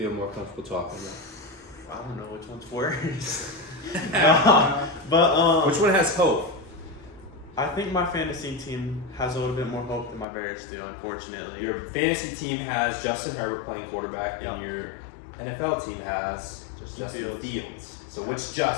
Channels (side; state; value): right; drops out; at 10.2 s